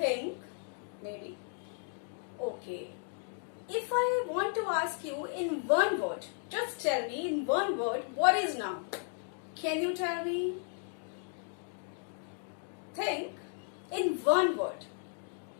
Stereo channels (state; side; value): silent; right; 55 dB below the other